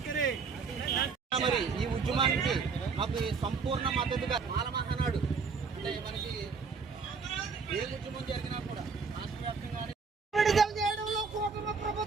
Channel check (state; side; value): quieter; left; 5.1 dB